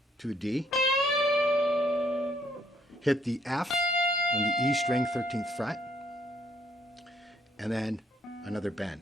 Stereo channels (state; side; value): normal; both; correlation 0.68